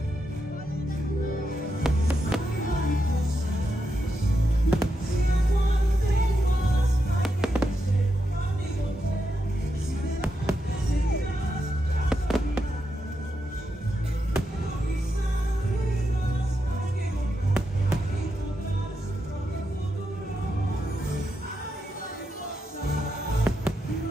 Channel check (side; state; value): both; normal; correlation 0.85